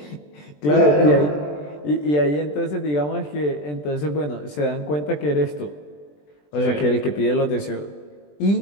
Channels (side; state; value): right; late; 20 ms